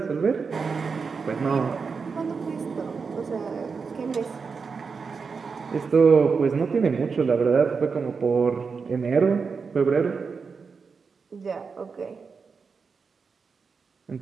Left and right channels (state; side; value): quieter; left; 5.2 dB